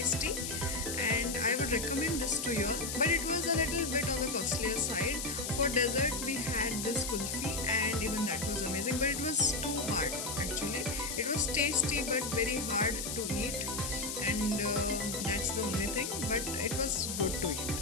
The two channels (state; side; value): noise; left; hiss, 4 dB below the sound